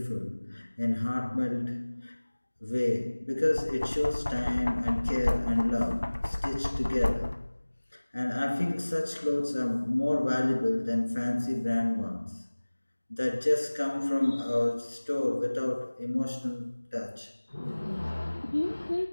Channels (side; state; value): both; inverted; correlation -1.00